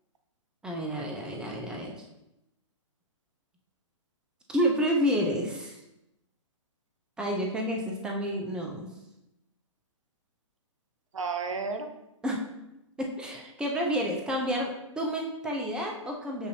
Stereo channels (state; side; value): normal; both; correlation 0.06